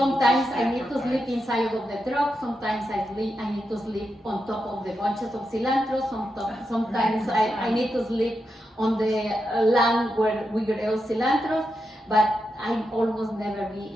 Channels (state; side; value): normal; both; correlation 0.86